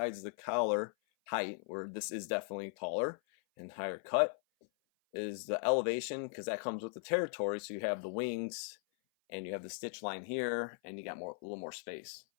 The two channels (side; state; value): right; silent; 52 dB below the other